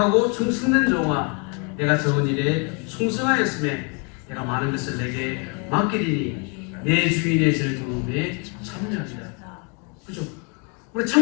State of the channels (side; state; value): right; quieter; 35.4 dB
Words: 충성된 종아 내가 적은 일에 충성하였음에 내가 많은 것을 내게 맡기리니 내 주인의 절 도움에 참여하리라. 그렇죠? 우리